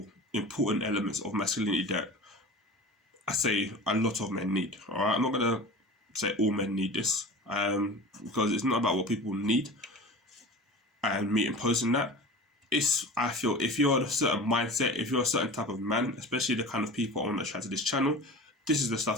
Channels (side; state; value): both; normal; correlation 0.35